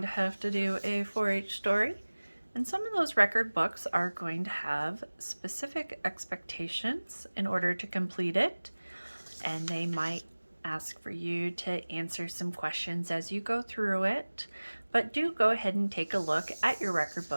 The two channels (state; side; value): inverted; both; correlation -1.00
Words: have to do a 4-H story. And some of those record books are going to have specific expectations in order to complete it. And they might ask for you to answer some questions as you go through it. But do go ahead and take a look at your record